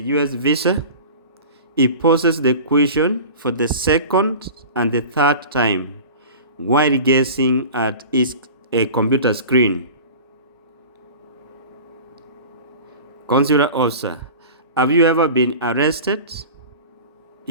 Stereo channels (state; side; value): inverted; both; correlation -0.37